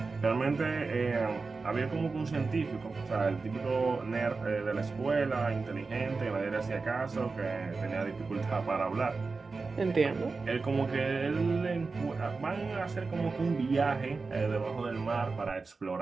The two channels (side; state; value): left; quieter; 4.2 dB